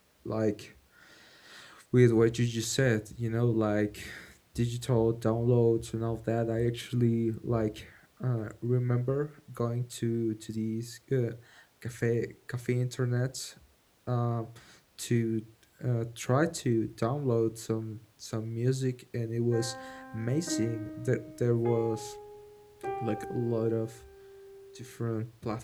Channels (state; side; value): identical; both; correlation 1.00